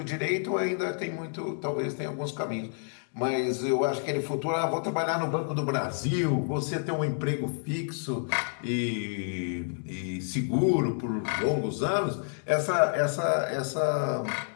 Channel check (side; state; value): right; silent; digital silence